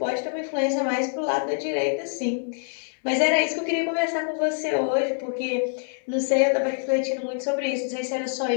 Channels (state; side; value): silent; right; 57 dB below the other